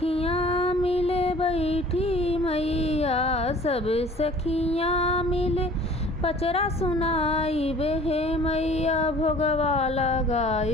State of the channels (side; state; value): both; normal; correlation 0.49